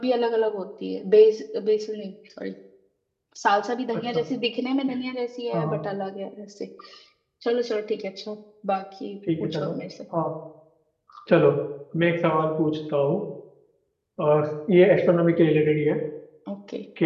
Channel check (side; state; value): both; identical; correlation 1.00